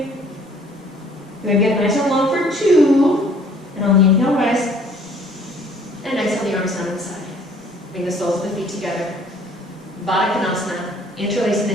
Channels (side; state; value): both; normal; correlation 0.57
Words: Good, get nice and long for 2. And on the inhale, rise. And exhale the arms down to the side. Bring the soles of the feet together. Baddha Konasana. Interlacing the